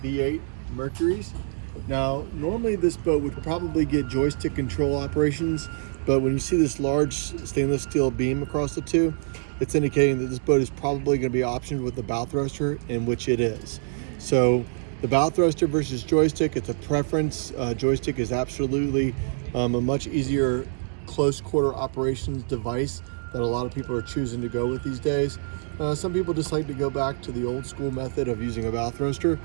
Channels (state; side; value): silent; left; digital silence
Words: V8 Mercuries. Now, normally this boat would probably get joystick control operations, but when you see this large stainless steel beam across the two, it's indicating that this boat is probably going to be optioned with the bow thruster, in which it is. So the bow thruster versus joystick, it's a preference. Joystick is absolutely a much easier close quarter operations device that a lot of people are choosing to go with these days. Some people just like to go back to the old school method of using a bow thruster,